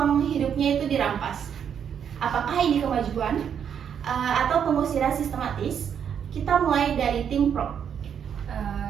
hidupnya itu dirampas. Apakah ini kemajuan atau pengusiran sistematis? Kita mulai dari tim pro.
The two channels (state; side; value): quieter; left; 8.1 dB